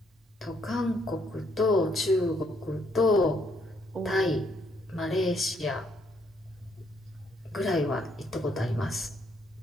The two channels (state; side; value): normal; both; correlation 0.70